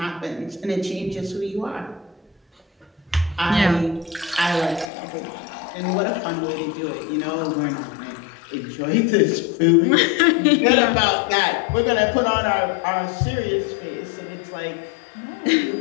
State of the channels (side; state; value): right; drops out; at 4.9 s